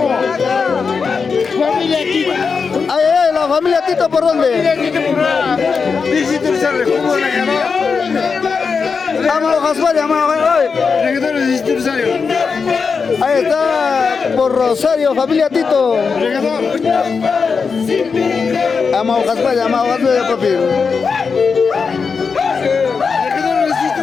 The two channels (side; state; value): right; quieter; 5.3 dB